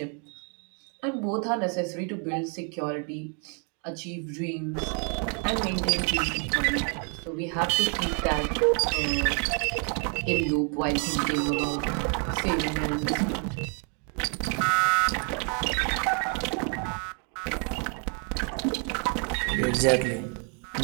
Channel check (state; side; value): quieter; left; 39.4 dB